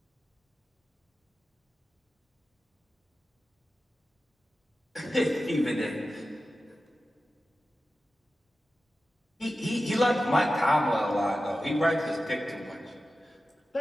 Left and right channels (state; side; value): normal; both; correlation 0.93